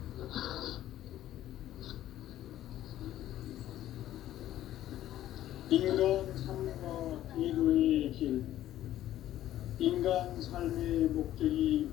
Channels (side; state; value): right; quieter; 13.0 dB